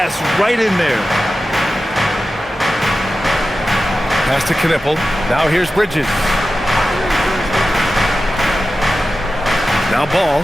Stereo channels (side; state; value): both; normal; correlation 0.93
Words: right in there. Pass to Knipple. Now here's Bridges. Now Ball.